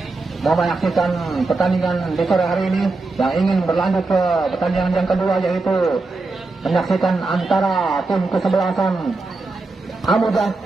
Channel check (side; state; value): left; quieter; 3.5 dB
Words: mau menyaksikan pertandingan di sore hari ini yang ingin berlanjut ke pertandingan yang kedua yaitu menyaksikan antara tim kesebelasan Amuja